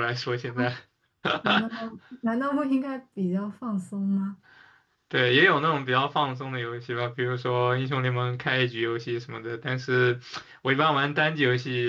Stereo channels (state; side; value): identical; both; correlation 1.00